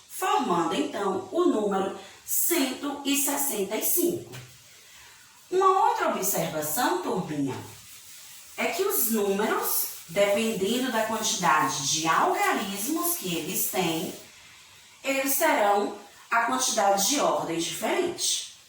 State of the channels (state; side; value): identical; both; correlation 1.00